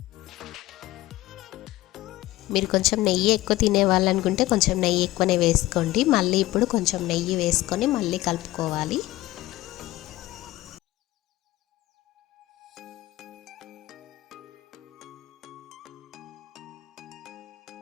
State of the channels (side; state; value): right; quieter; 17.2 dB